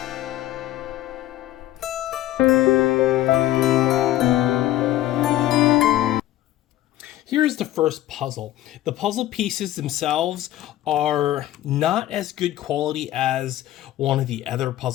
Here's the first puzzle. The puzzle pieces themselves are not as good quality as one of the other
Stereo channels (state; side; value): quieter; right; 14.4 dB